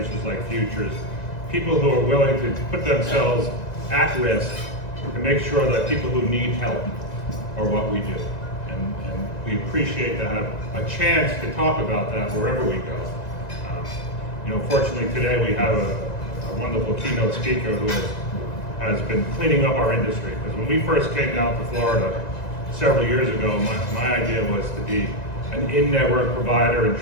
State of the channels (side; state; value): right; late; 1.9 ms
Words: like Futures, people who are willing to put themselves at risk to make sure that people who need help are what we do. And we appreciate to have a chance to talk about that wherever we go. Fortunately today we have a wonderful keynote speaker who has been cleaning up our industry. Because when we first came down to Florida several years ago, my idea was to be an in-network provider and